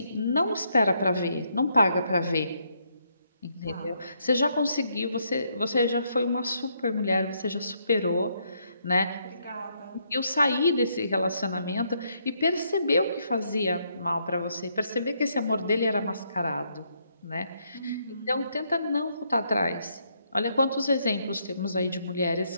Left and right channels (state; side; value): inverted; both; correlation -0.75